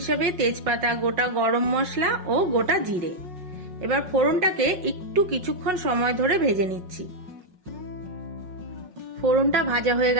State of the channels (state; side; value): late; left; 5.5 ms